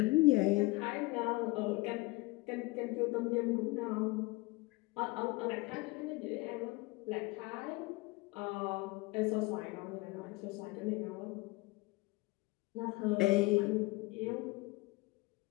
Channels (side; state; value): right; quieter; 22.8 dB